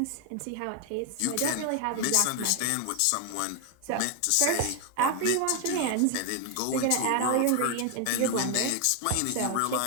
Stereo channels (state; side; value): different; both; correlation 0.01